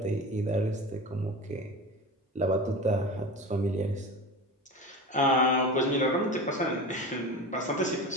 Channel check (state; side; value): normal; both; correlation 0.30